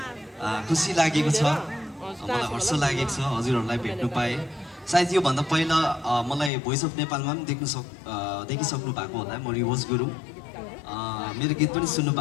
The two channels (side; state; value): right; drops out; at 6.5 s